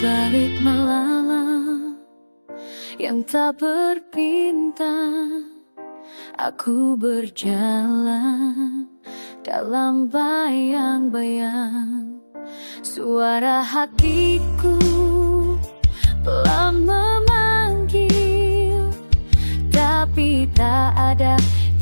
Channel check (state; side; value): inverted; both; correlation -1.00